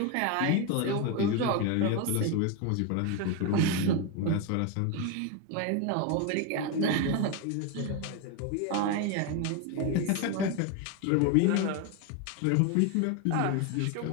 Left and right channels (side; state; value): both; different; correlation 0.02